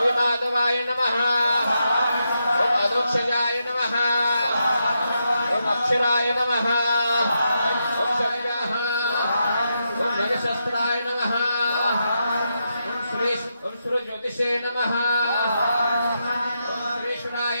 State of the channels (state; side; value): inverted; both; correlation -0.84